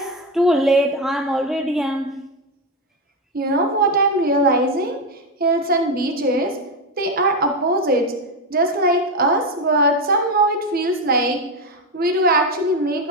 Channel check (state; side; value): normal; both; correlation 0.11